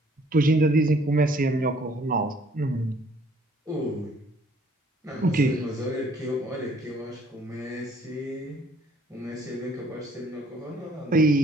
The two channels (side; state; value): both; normal; correlation 0.60